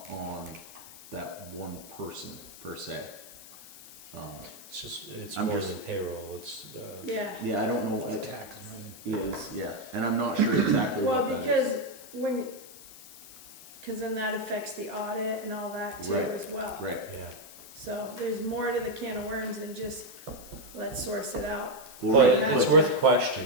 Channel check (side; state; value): left; noise; hiss, 17 dB below the sound